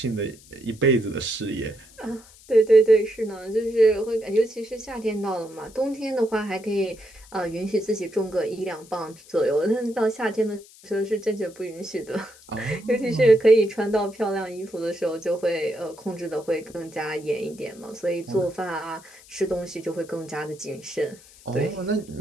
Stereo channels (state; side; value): noise; left; hiss, 23 dB below the sound